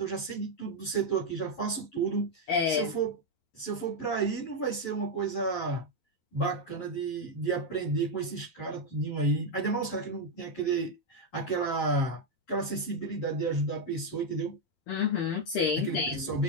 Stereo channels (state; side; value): late; right; 11 ms